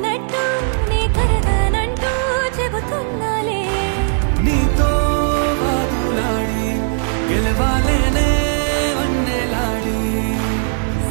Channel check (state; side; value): silent; left; digital silence